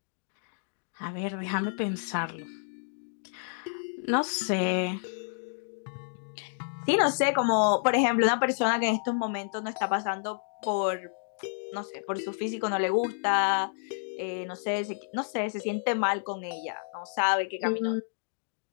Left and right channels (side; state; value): right; silent; digital silence